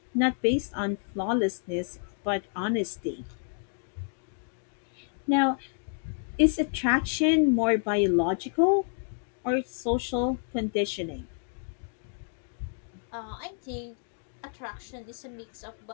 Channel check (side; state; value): right; silent; 58 dB below the other